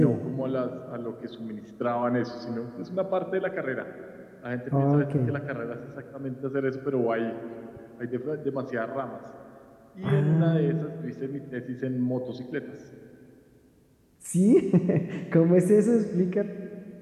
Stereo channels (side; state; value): both; identical; correlation 1.00